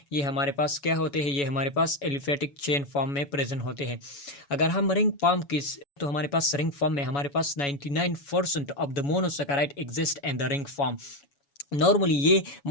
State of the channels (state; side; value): late; right; 7.1 ms